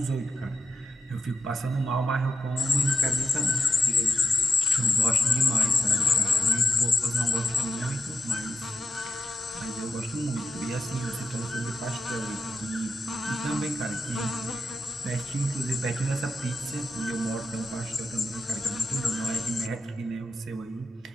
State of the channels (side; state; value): both; normal; correlation 0.88